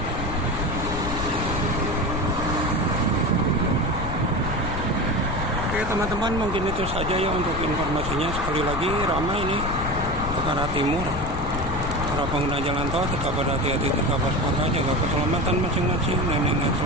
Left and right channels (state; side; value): noise; left; rumble, 5 dB below the sound